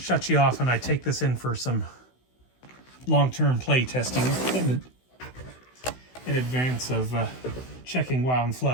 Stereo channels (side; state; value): right; late; 16 ms